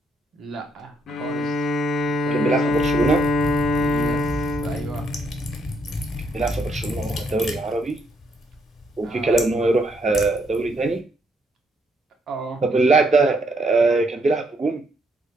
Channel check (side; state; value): both; normal; correlation 0.73